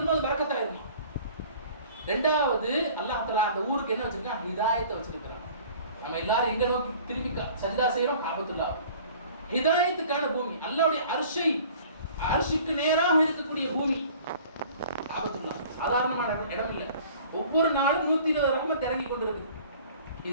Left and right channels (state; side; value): inverted; both; correlation -0.49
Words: அது பரக்கத்தாயிருமா. ரெண்டாவது, அல்லாஹ் தஆலா அந்த ஊருக்கு என்ன வச்சிருக்கான்? ஹிதாயத்தை வச்சிருக்கான். நம்ம எல்லாரும் எங்க நோக்கி திரும்பி சஜ்தா செய்யறோம்? காபத்துல்லாஹ். ஹிதாயத்துக்கான பூமி, அல்லாஹ்வுடைய அர்ஷுக்கு நேராக இருக்கக்கூடிய பூமி காபத்துல்லாஹ். சாதாரணமான இடம் இல்ல. ஒவ்வொரு நாளும் 120 ரஹ்மத் இறங்கி கொண்டிருக்கு.